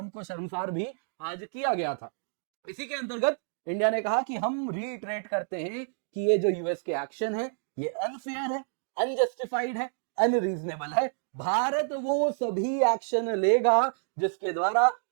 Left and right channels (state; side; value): silent; left; digital silence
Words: को शर्मसार भी आज किया गया था। इसी के अंतर्गत इंडिया ने कहा कि हम रीइटरेट करते हैं कि ये जो यूएस के एक्शन है ये अनफेयर है, अनजस्टिफाइड है, अनरीजनेबल है। भारत वो सभी एक्शन लेगा जिसके द्वारा